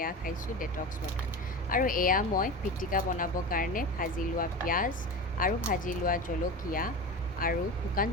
খাইছোঁ ডেটক্স ৱাটাৰ। আৰু এয়া মই পিটিকা বনাবৰ কাৰণে ভাজি লোৱা পিঁয়াজ আৰু ভাজি লোৱা জলকীয়া আৰু শুকান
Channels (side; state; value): both; normal; correlation 0.28